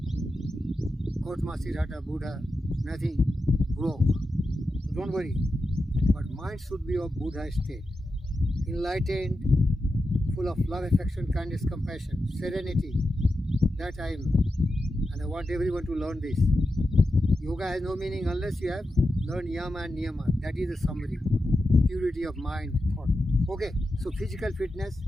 Kotma Sirhata Buddha, nothing, broke. So don't worry, but mind should be of Buddha state, enlightened, full of love, affection, kindness, compassion, serenity. That I am, and I want everyone to learn this. Yoga has no meaning unless you have learned yama and niyama. That is the summary. Purity of mind, thought. Okay, so physical fitness,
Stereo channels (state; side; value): normal; both; correlation 0.90